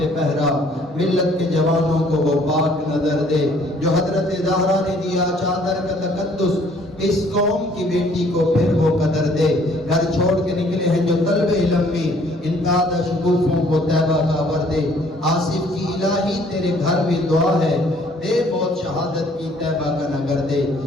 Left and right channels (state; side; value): normal; both; correlation 0.60